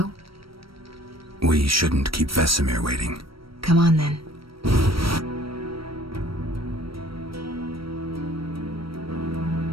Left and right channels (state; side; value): late; left; 0.75 ms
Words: We shouldn't keep Vesemir waiting. Come on then.